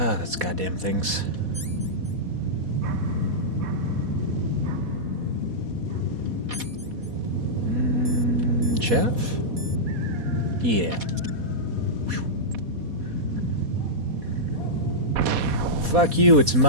that's goddamn things. Chaff? Yeah. Fuck you, it's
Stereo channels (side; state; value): left; late; 4.1 ms